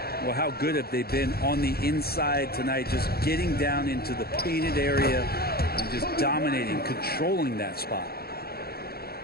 Well, how good have they been on the inside tonight, just getting down into the painted area and just dominating, controlling that spot.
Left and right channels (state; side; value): late; right; 0.45 ms